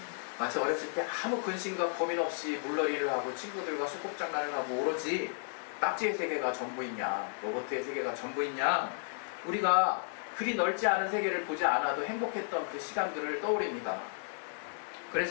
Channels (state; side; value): silent; right; 56 dB below the other